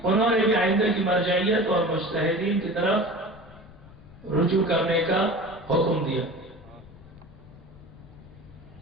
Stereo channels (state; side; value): noise; left; rumble, 21 dB below the sound